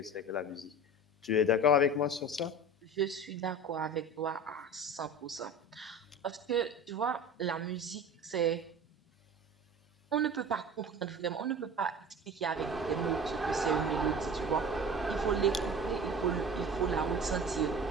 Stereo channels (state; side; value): normal; both; correlation 0.37